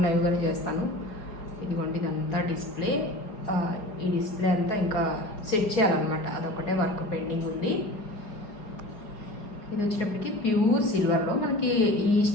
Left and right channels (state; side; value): late; right; 4.8 ms